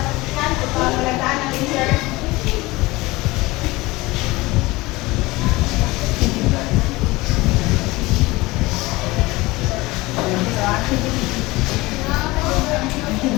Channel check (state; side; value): quieter; right; 21.1 dB